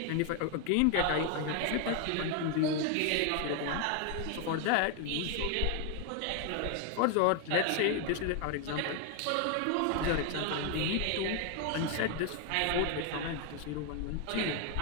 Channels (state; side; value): different; both; correlation 0.01